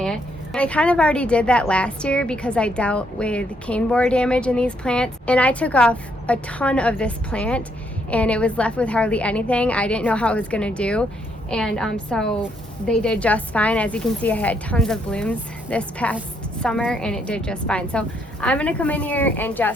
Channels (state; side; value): normal; both; correlation 0.73